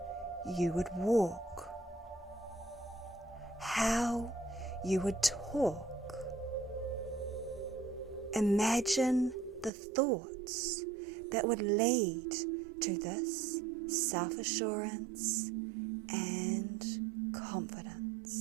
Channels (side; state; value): left; drops out; at 9.7 s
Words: you would walk, how you would talk. Imagine the thoughts that would lead to this self-assurance and